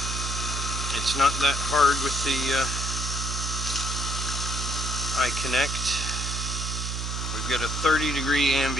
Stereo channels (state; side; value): noise; right; hum, 3 dB below the sound